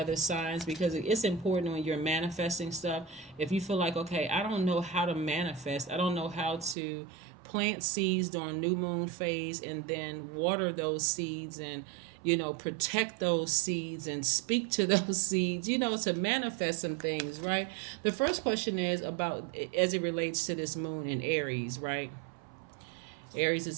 signs, because it's important when you're manifesting stuff. If you feel like, okay, I don't know how to manifest, I don't know how to plant seeds during new moon phase and then water those seeds and protect those seeds and speak to those seeds, to manifest some things, right? The first question is about, as it relates to this moon in Aries, right? Aries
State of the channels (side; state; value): left; drops out; at 6.8 s